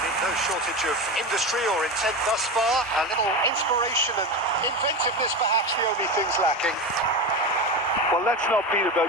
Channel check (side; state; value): both; normal; correlation 0.22